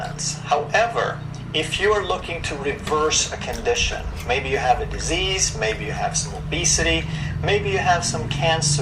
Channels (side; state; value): both; identical; correlation 1.00